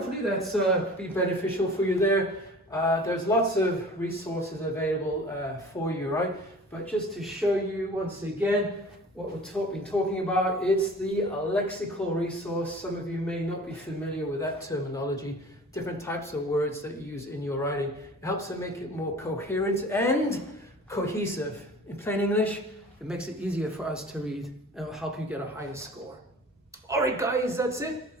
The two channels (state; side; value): normal; both; correlation 0.43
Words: that's be beneficial for you there. There's lots of resources available for you, right? But just to show you once again what we've been talking about, it's the lexical resource. Some of you may not be familiar with that terminology. Different types of words that you use in your writing. It helps to make it more coherent and cohesive. In plain English, it makes it easier for us to read and it will help you get a higher score. All right, guys, that's it.